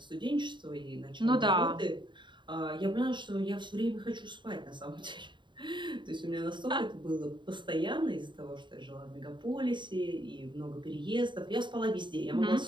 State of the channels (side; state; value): left; late; 0.23 ms